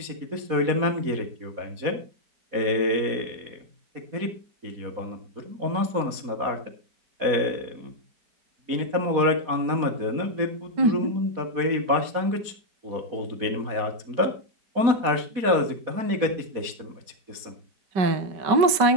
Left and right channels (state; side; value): late; left; 4.2 ms